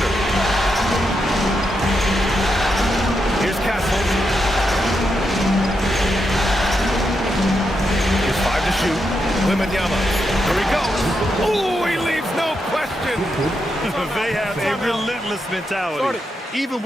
Here's Castle. Here's 5 to shoot. Wembanyama. Here he goes. Oh, he leaves no question. They have a relentless mentality, even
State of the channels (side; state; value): both; normal; correlation 0.84